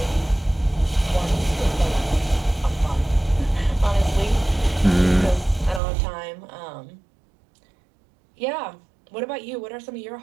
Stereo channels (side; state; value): left; drops out; at 5.8 s